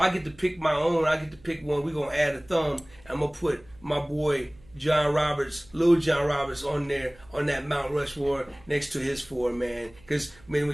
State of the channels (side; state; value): right; noise; hum, 26 dB below the sound